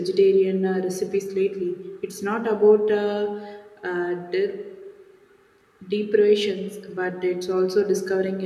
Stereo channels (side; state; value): both; identical; correlation 1.00